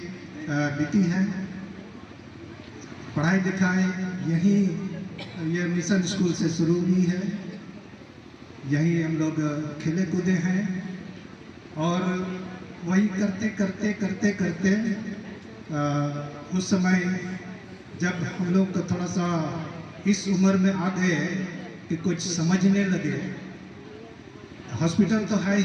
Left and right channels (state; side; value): identical; both; correlation 1.00